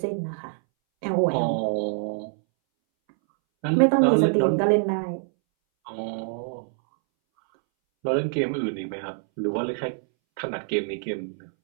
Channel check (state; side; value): silent; left; 61 dB below the other